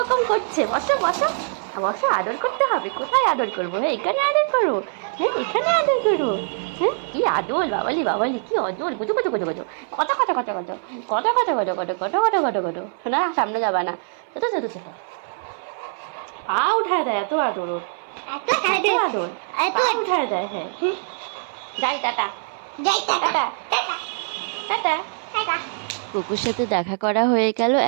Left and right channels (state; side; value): silent; left; 59 dB below the other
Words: করছে। বসো বসো বসো, আদর করতে হবে। কোথায় আদর করবো? হ্যাঁ এখানে আদর করো, হ্যাঁ এখানে আদর করো। হ্যাঁ কি আদর, বাবালি বাবালি কি আদর। গুজো গুজো গুজো গুজো, কত কত কত কত কত কত কত কত কত কত কত কত। না সামনে যাবা না, ছোট ছোট ছোট। পা উঠায় দেয়, এত আদর ওর, এত আদর। পা উঠায় দেয়। হ্যাঁ যাই, টাটা যাই, টাটা টাটা টাটা। কুকুর সাথে দেখা করা হয়ে গেল।